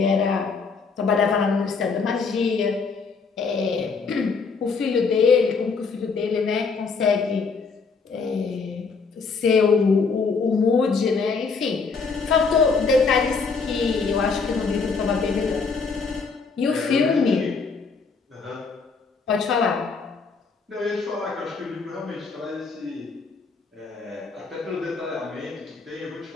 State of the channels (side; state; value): right; quieter; 4.8 dB